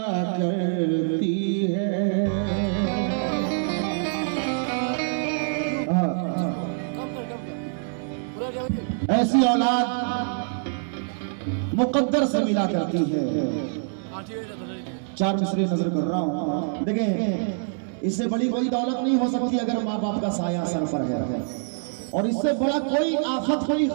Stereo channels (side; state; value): left; silent; digital silence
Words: करती है। ऐसी औलाद मुक़द्दर से मिला करती है। चार मिसरे नजर कर रहा हूँ, देखें इससे बड़ी कोई दौलत नहीं हो सकती अगर माँ बाप का साया सर पर है, और इससे बड़ा कोई आफत कोई